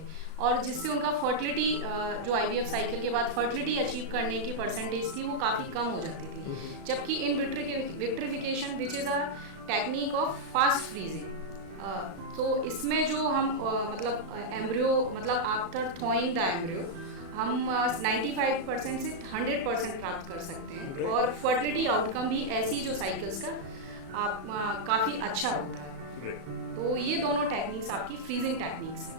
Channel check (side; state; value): left; late; 36 ms